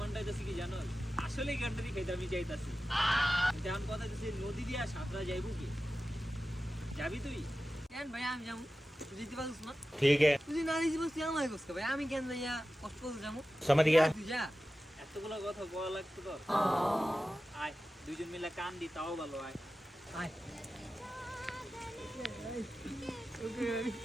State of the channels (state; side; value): normal; both; correlation 0.94